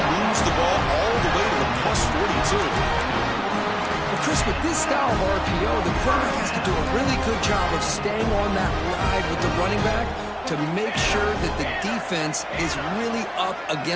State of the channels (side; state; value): both; identical; correlation 1.00